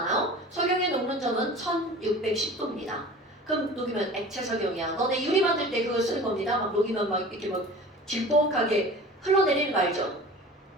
석영의 녹는 점은 1610도입니다. 그럼 녹이면 액체 석영이야. 너네 유리 만들 때 그거 쓰는 겁니다. 막 녹이면 막 이렇게 막 질퍽하게 흘러내리는 거 알죠?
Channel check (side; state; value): both; normal; correlation 0.40